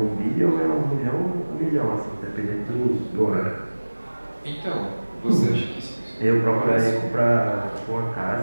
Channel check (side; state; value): both; inverted; correlation -1.00